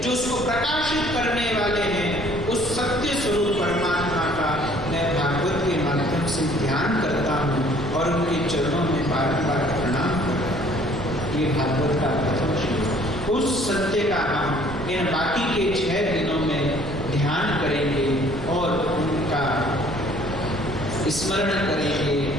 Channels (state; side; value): noise; right; rumble, 11 dB below the sound